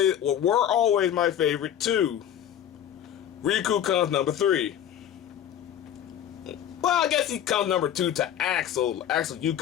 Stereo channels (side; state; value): right; quieter; 10.2 dB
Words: my favorite too. Riku comes number 3. Well, I guess he comes number 2 to Axel. Axel, you